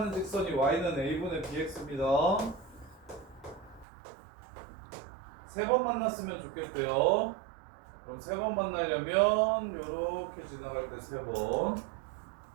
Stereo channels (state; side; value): drops out; left; at 3.9 s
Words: 직선이 Y는 A분의 BX입니다. 3번 만났으면 좋겠대요. 그럼 3번 만나려면 이렇게 지나갈 때 3번.